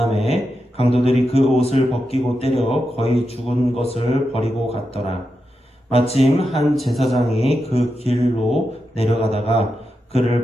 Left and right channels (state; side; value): normal; both; correlation 0.88